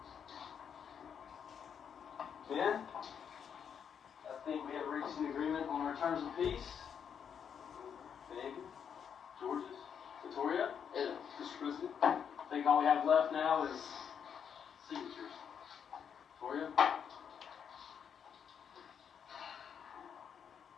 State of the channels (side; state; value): right; quieter; 7.6 dB